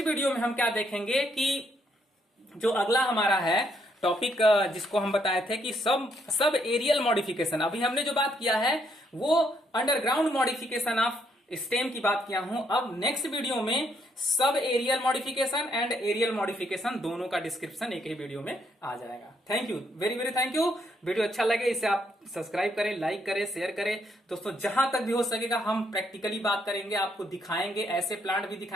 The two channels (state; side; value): normal; both; correlation 0.73